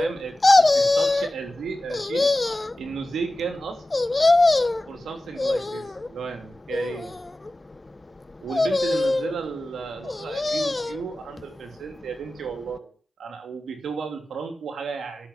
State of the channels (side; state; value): both; normal; correlation 0.95